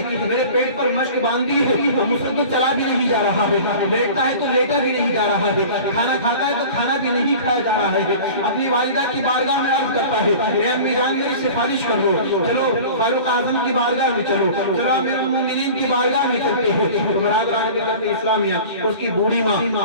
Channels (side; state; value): both; inverted; correlation -0.40